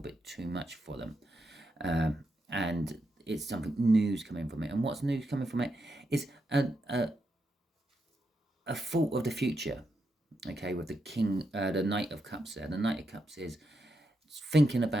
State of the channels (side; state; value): both; normal; correlation 0.84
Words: too much for them. And it's something new's coming from it. And what's news coming from it is a thought of the future. Okay, with the King, the Knight of Cups there. The Knight of Cups is thinking